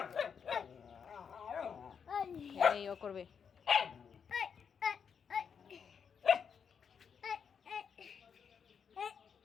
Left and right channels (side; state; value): right; quieter; 6.8 dB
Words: এই ও করবে